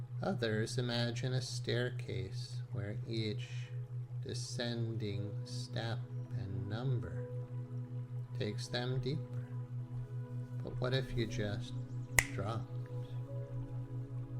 Others imagine a staircase where each descending step and number takes them deeper. But what if you just dropped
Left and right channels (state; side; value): identical; both; correlation 1.00